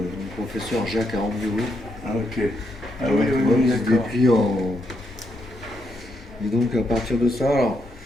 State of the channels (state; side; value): normal; both; correlation 0.78